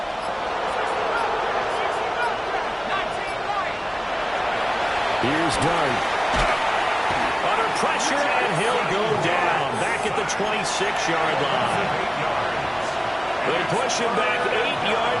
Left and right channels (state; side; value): identical; both; correlation 1.00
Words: Here's Dart. Under pressure, and he'll go down. Back at the 26-yard line. They push him back 8